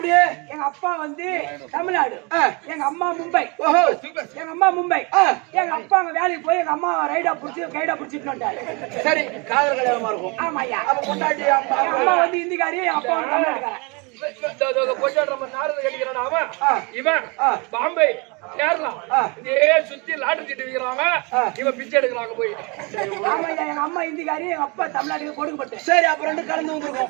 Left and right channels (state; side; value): quieter; left; 29.9 dB